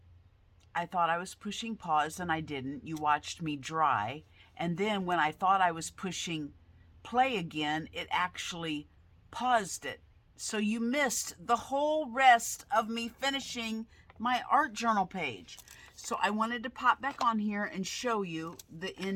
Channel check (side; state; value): both; identical; correlation 1.00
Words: I thought I was pushing pause and I didn't. You watched me dry. And then when I thought I was pushing play again, it actually paused it. So you missed the whole rest of me finishing my art journal page. So I wanted to pop back on here and show you the